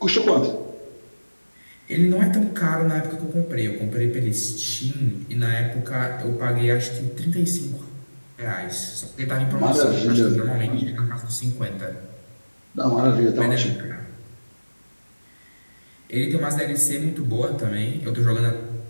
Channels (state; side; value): inverted; both; correlation -1.00